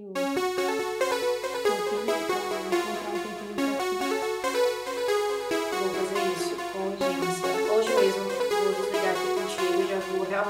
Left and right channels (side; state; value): both; identical; correlation 1.00